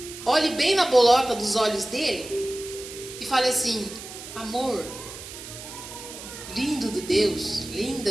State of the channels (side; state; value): right; noise; hiss, 12 dB below the sound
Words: olhe bem na bolota dos olhos dele e fale assim: amor, lindo de Deus,